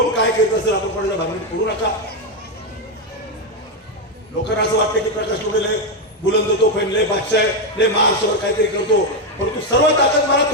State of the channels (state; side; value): normal; both; correlation 0.06